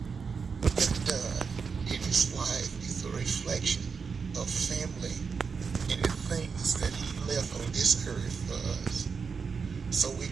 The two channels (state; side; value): quieter; left; 5.5 dB